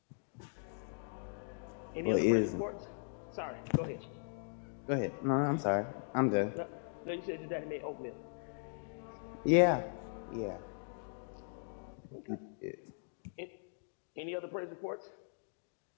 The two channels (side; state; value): right; silent; digital silence